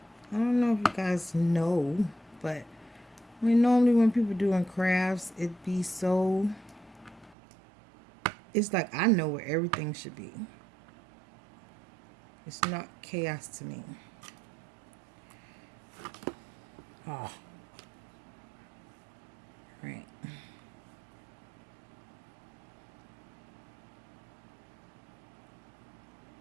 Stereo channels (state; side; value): drops out; left; at 7.4 s